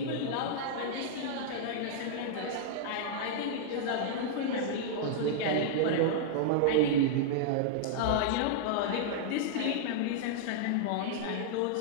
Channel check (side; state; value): both; different; correlation -0.01